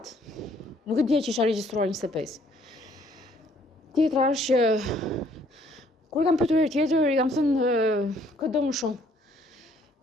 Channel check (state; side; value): normal; both; correlation 0.63